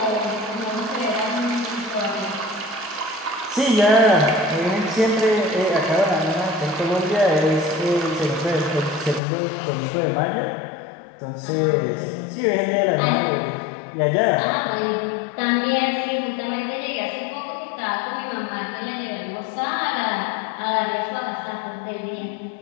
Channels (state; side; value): drops out; right; at 9.2 s